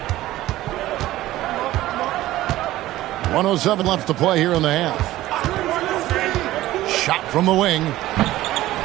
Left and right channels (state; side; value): quieter; left; 15.7 dB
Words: 1:07 left to play here in the half. Shot from the wing.